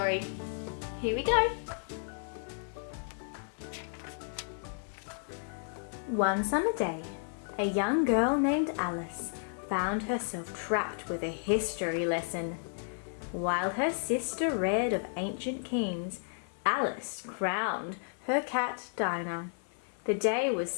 Here we go. One summer day, a young girl named Alice found herself trapped with a history lesson. While her sister read of ancient kings, Alice crowned her cat Dinah. The day was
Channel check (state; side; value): silent; right; 56 dB below the other